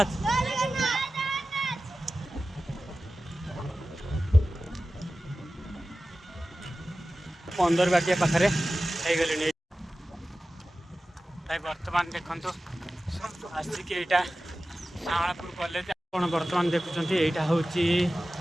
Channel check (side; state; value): both; normal; correlation 0.95